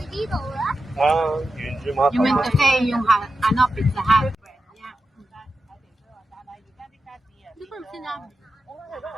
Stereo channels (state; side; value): normal; both; correlation 0.90